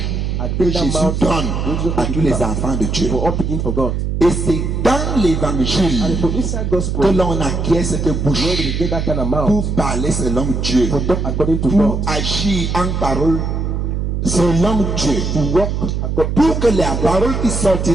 que Jésus donne à tous les enfants de Dieu. Et c'est dans l'évangile que l'on acquiert cette bouche pour parler selon Dieu, pour agir en parole selon Dieu, pour que la parole qui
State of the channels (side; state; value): right; noise; hum, 1 dB below the sound